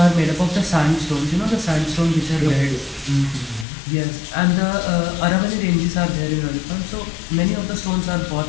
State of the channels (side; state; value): right; drops out; at 3.7 s